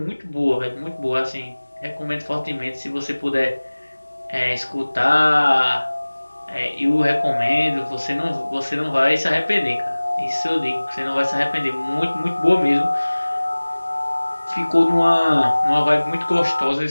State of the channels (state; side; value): inverted; both; correlation -1.00